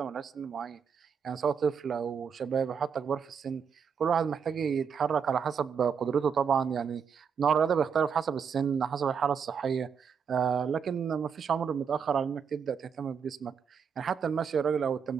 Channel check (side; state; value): left; quieter; 6.7 dB